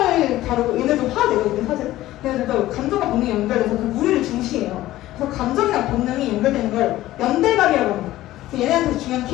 다루고 얘네도 화가 내거든요. 사실 얘네들도 감정과 본능이 연결돼서 그 무리를 중시해요. 그래서 감정이랑 본능이 연결되는 걸 연대감이라고 합니다. 얘네한테 중요한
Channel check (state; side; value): quieter; right; 15.5 dB